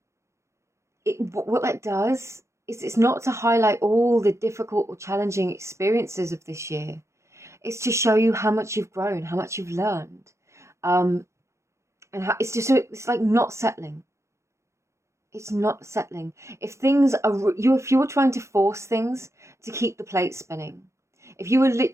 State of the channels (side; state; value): left; late; 0.14 ms